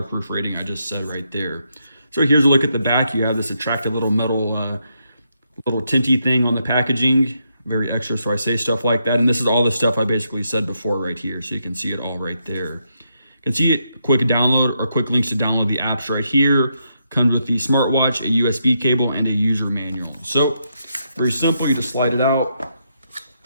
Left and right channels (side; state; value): both; inverted; correlation -0.80